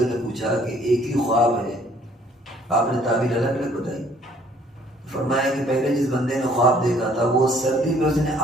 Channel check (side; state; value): both; normal; correlation 0.60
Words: نے پوچھا کہ ایک ہی خواب ہے، آپ نے تعبیر الگ الگ بتائی. فرمایا کہ پہلے جس بندے نے خواب دیکھا تھا وہ سردی میں اس نے